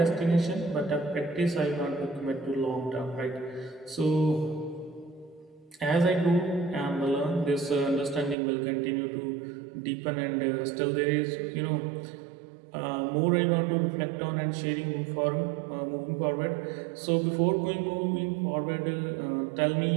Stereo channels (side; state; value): left; drops out; at 8.3 s